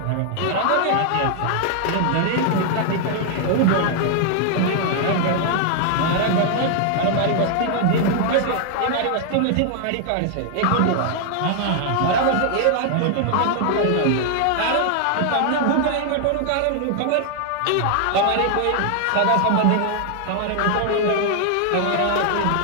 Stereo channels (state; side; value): different; both; correlation 0.00